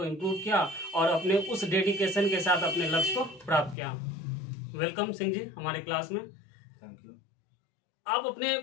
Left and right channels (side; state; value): right; drops out; at 3.8 s